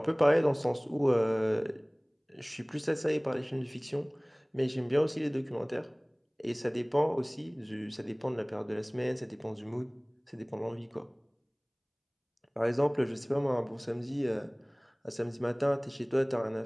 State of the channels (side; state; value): both; identical; correlation 1.00